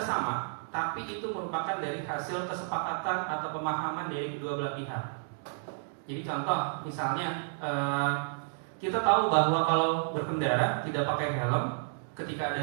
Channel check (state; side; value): silent; left; digital silence